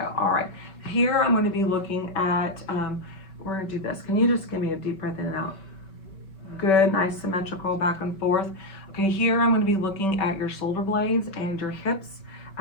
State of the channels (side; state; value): right; late; 5.2 ms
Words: all right. Here I'm gonna be looking at, we're gonna do this. Can you just give me a deep breath in and out? Good, nice symmetrical back and forth. Okay, here I'm going to be looking at your shoulder blades and your hips.